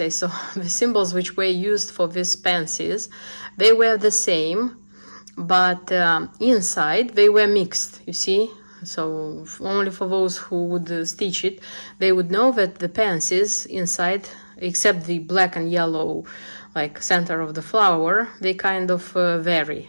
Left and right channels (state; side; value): inverted; both; correlation -1.00